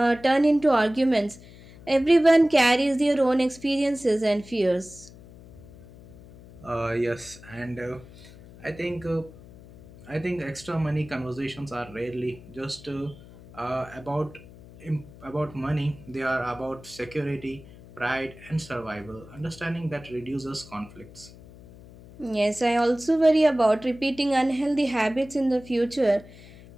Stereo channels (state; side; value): noise; left; hum, 20 dB below the sound